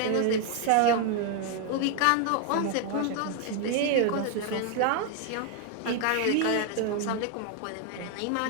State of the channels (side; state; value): both; different; correlation 0.00